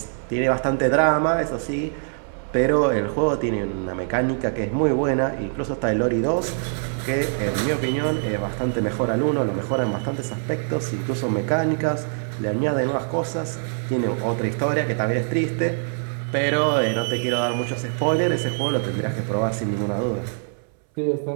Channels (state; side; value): silent; left; 63 dB below the other